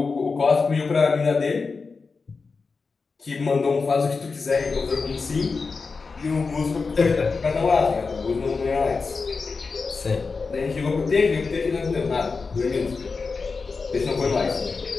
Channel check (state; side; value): quieter; right; 4.5 dB